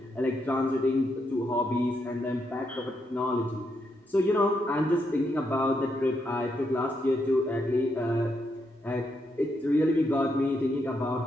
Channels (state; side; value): normal; both; correlation 0.80